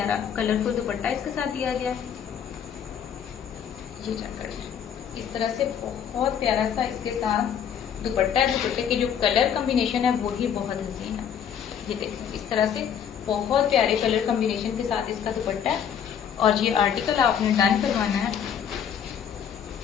कलरफुल दुपट्टा इसके साथ दिया गया है। ये चेक करिए, इस तरह से बहुत प्यारा सा इसके साथ दुपट्टा है। दुपट्टे के जो कलर कॉम्बिनेशन है वो ही बहुत हसीन है। ये देखिए इस तरह से बहुत प्यारे कलर कॉम्बिनेशन के साथ इसका दुपट्टा है, और ये आर्टिकल आपने डन करवाना है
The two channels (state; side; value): quieter; right; 8.3 dB